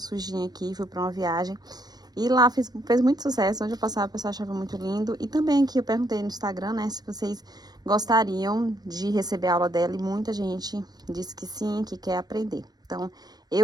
aqui, fui para uma viagem. E lá fez muito sucesso, onde eu passava, o pessoal achava muito lindo. E também aqui eu perguntei no Instagram, né, se vocês gostariam de receber a aula dela. E muita gente disse que sim, que quer aprender. Então,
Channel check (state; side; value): late; left; 0.19 ms